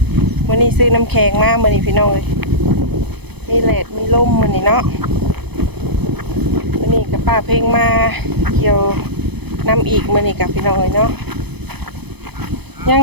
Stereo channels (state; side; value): late; left; 0.98 ms